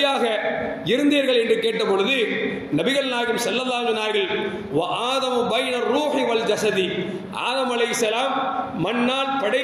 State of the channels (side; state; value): both; identical; correlation 1.00